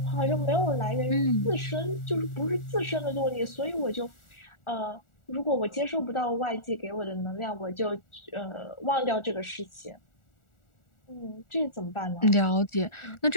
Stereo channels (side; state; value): right; late; 1.4 ms